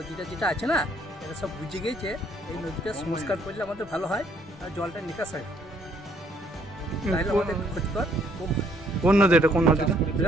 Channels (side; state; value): both; normal; correlation 0.66